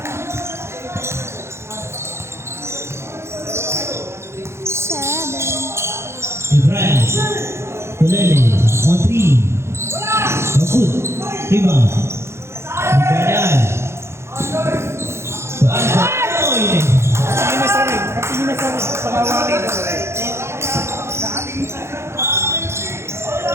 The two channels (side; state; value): left; late; 0.13 ms